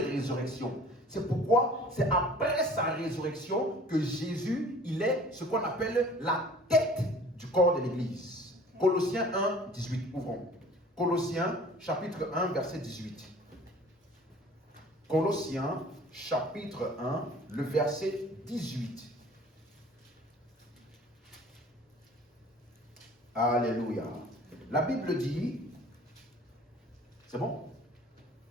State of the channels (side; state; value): both; normal; correlation 0.49